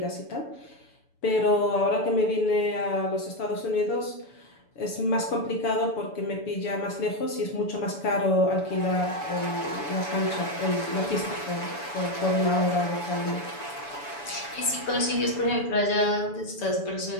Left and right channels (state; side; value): late; right; 7.0 ms